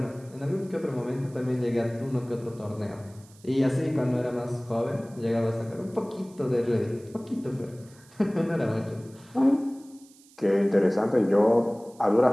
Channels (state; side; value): noise; right; hiss, 26 dB below the sound